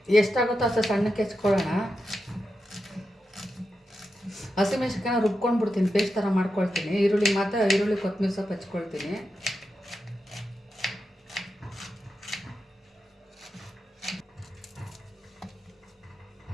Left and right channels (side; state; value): both; normal; correlation 0.88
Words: ಎಷ್ಟಾಗುತ್ತೋ ಅಷ್ಟು ಸಣ್ಣಕ್ಕೆ ಹೆಚ್ಕೊಳ್ಳೋಣ. ಹಸಿಮೆಣಸಿನ್ಕಾಯಿನ ರುಬ್ಕೊಂಡು ಬಿಡ್ತೀನಿ, ಪೇಸ್ಟ್ ಥರ ಮಾಡ್ಕೊಳ್ತೀನಿ. ಈರುಳ್ಳಿ ಕೊತ್ತಂಬರಿ ಸೊಪ್ಪು ಹೆಚ್ಕೊಳ್ತೀನಿ.